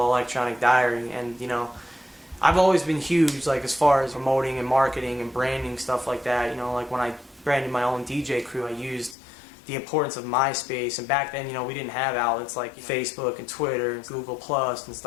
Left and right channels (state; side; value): drops out; right; at 9.2 s